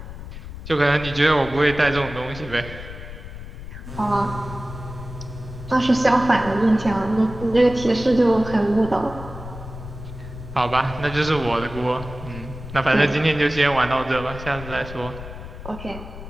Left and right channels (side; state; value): left; noise; rumble, 12 dB below the sound